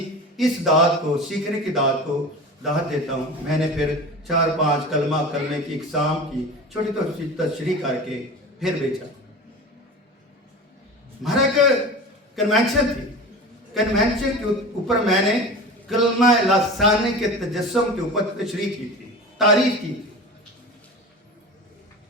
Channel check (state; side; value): normal; both; correlation 0.32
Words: इस दात को, सीखने की दात को दात देता हूँ। मैंने फिर 4-5 कलमे की इकसाम की छोटी छोटी तशरीह करके फिर बेचा। हमारा एक कन्वेंशन थी, कन्वेंशन के ऊपर मैंने कलमा लासानी के तजस्सुम के ऊपर तशरीह की थी, तारीफ की थी।